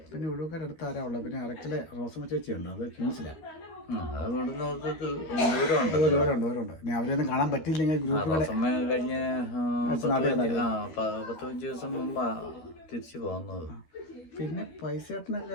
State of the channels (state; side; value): late; right; 13 ms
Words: പിന്നെ ഒഴുക്കാരടുത്ത് ആരാ ഉള്ളത്? പിന്നെ അറക്കലെ റോസമ്മ ചേച്ചിയുണ്ട്, അത് ക്യൂൻസിലാണ്. ദൂരമുണ്ട്. ഇനി അവരെയൊന്നും കാണാൻ പറ്റിയില്ലെങ്കിൽ ഗ്രൂപ്പിൽ കഴിഞ്ഞ 10-15 ദിവസം മുമ്പാ തിരിച്ചു പോകുന്നത്. പിന്നെ